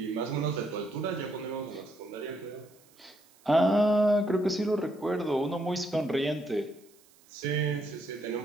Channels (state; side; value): noise; right; hiss, 29 dB below the sound